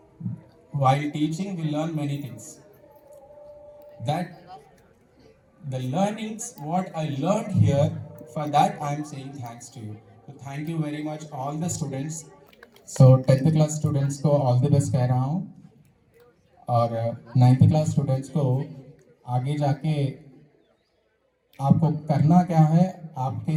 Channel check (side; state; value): both; identical; correlation 1.00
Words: While teaching, we learn many things. That the learnings, what I learned here, for that I am saying thanks to you. So thank you very much all the students. So 10th class students को all the best कह रहा हूँ, और 9th class students को आगे जाके आपको करना क्या है,